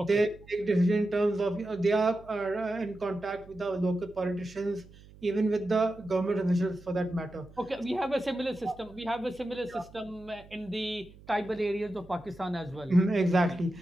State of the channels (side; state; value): right; noise; hum, 22 dB below the sound